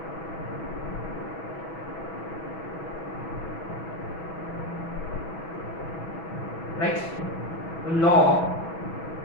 राइट? तो log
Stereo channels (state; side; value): late; right; 6.1 ms